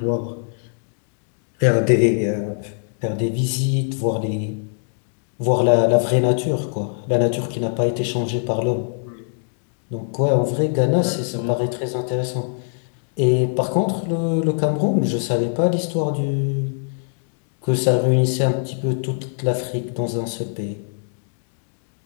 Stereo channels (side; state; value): right; silent; digital silence